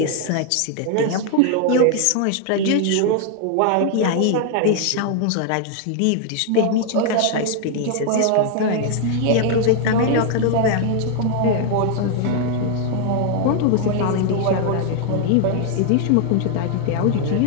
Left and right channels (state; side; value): different; both; correlation 0.00